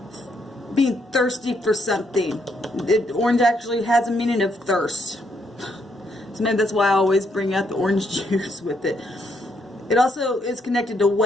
Being thirsty for something. Orange actually has a meaning of thirst. So maybe that's why I always bring out the orange juice with it. It also is connected to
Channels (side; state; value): both; normal; correlation 0.74